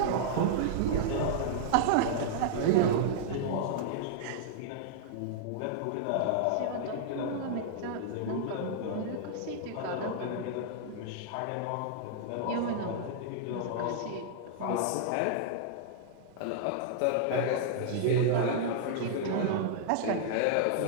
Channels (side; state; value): both; different; correlation -0.01